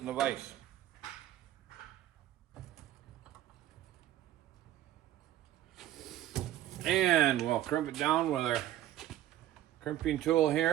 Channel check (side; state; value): left; quieter; 13.3 dB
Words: the vise. And we'll crimp it down with our crimping tool